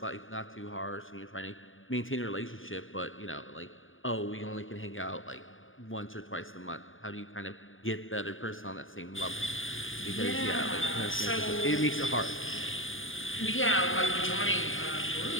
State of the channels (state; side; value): late; right; 0.58 ms